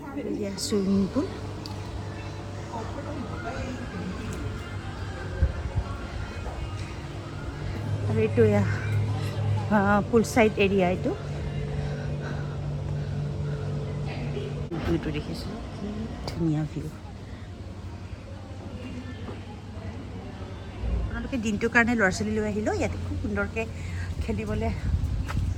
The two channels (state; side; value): identical; both; correlation 1.00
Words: চুইমিং পুল আৰু এইটো এয়া পুল চাইড এৰিয়া এইটো ভিউটো দেখিছোঁ ধুনীয়া ভিউ আপোনালোকে দিনটোৰ কাৰণে ল'ৰা ছোৱালী লৈ আহিলেও ইয়াতে খুব সুন্দৰকৈ খেলিবলৈ